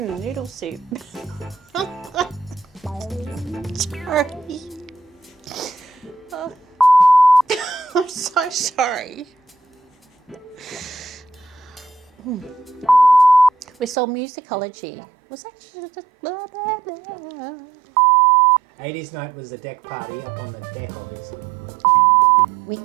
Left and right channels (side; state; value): left; drops out; at 14.0 s